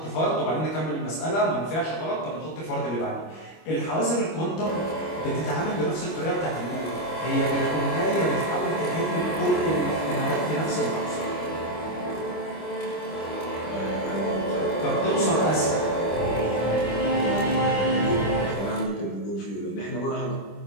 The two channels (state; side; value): late; right; 25 ms